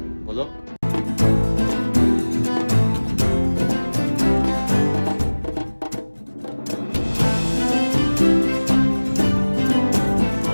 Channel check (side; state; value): both; inverted; correlation -1.00